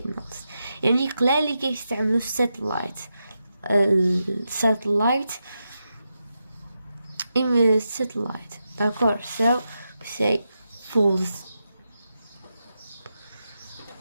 يعني قلالي كيستعملوا الساتلايت d'accord, so we say false.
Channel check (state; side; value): inverted; both; correlation -0.87